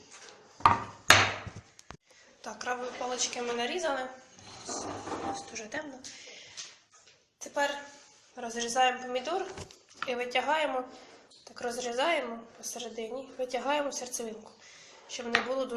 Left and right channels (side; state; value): both; identical; correlation 1.00